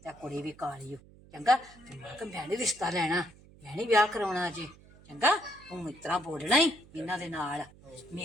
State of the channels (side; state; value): right; noise; hum, 23 dB below the sound